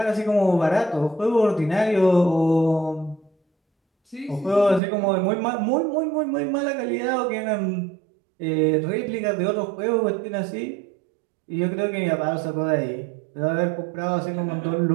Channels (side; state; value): left; drops out; at 4.8 s